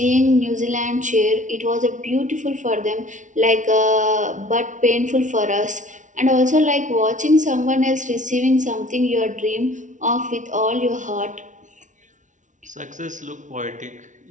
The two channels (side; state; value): left; late; 0.37 ms